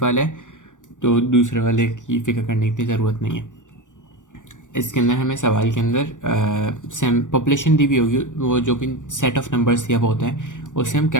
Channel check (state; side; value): late; right; 0.87 ms